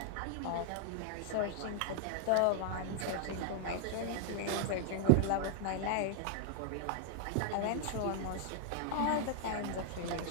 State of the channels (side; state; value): both; different; correlation -0.01